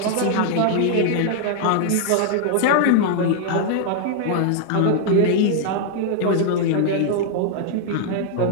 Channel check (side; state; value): both; different; correlation -0.01